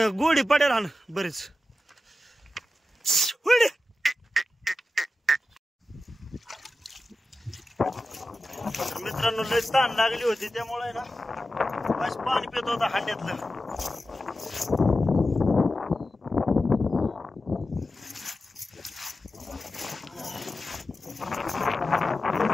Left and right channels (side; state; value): both; normal; correlation 0.92